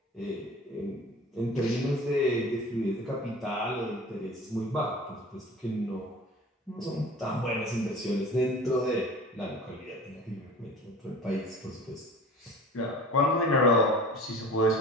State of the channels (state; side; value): normal; both; correlation 0.41